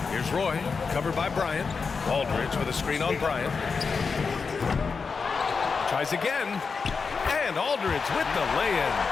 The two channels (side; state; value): right; quieter; 5.1 dB